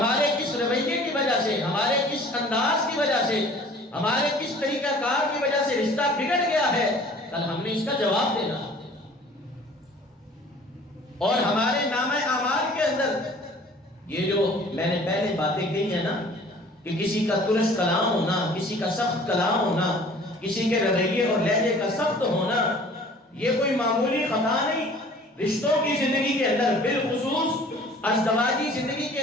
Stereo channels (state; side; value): normal; both; correlation 0.50